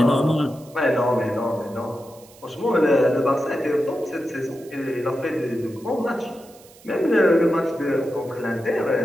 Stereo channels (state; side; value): noise; right; hiss, 25 dB below the sound